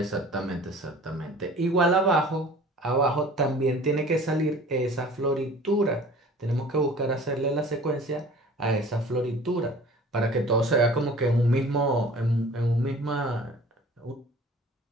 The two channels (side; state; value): both; normal; correlation 0.46